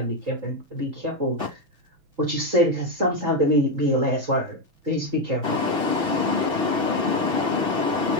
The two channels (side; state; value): left; late; 6.1 ms